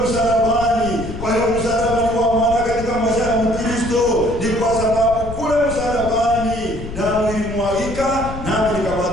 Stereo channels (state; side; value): noise; left; rumble, 10 dB below the sound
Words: msalabani. Kwa hiyo msalaba ni wa maana katika maisha ya Mkristo, ni kwa sababu kule msalabani damu ilimwagika na